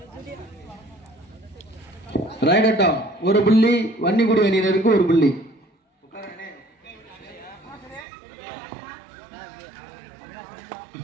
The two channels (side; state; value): left; drops out; at 8.1 s